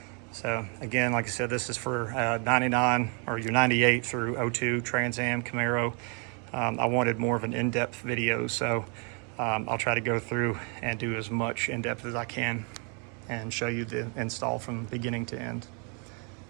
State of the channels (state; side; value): quieter; left; 36.5 dB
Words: So again, like I said, this is for 99 or your 98 through 02 Trans Am Camaro. I wanted more of an in-depth video, so I'll try to go through and do as much in-depth as I can and show you the install from beginning to end.